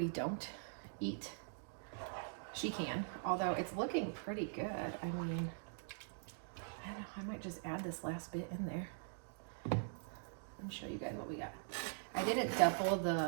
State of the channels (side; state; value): left; silent; digital silence